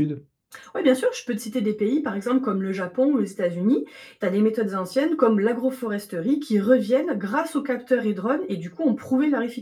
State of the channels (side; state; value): both; identical; correlation 1.00